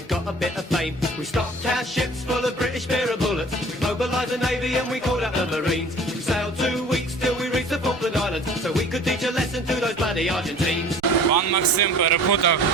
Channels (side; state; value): both; normal; correlation 0.46